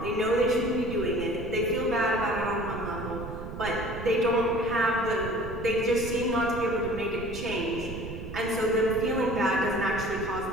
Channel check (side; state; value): right; noise; rumble, 10 dB below the sound